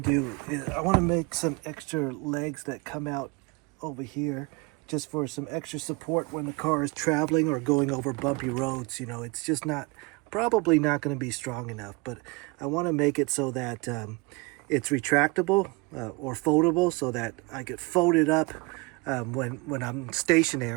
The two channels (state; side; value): quieter; left; 27.1 dB